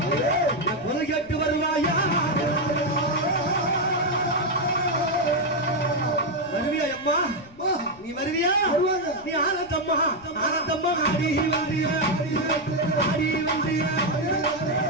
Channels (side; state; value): left; noise; rumble, 24 dB below the sound